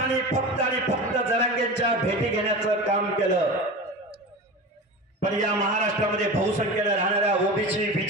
फक्त आणि फक्त जरांगेंच्या भेटी घेण्याचं काम केलं। पण या महाराष्ट्रामध्ये बहुसंख्येने राहणाऱ्या ओबीसी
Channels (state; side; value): normal; both; correlation 0.29